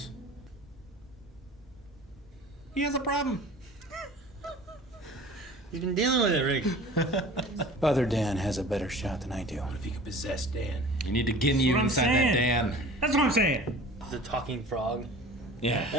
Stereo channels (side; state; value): both; normal; correlation 0.43